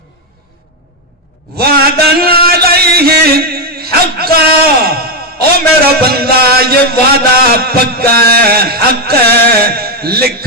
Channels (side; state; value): both; normal; correlation 0.04